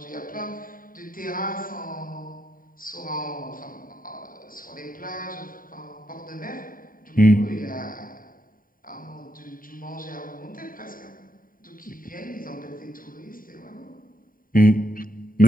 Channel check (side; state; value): right; late; 0.41 ms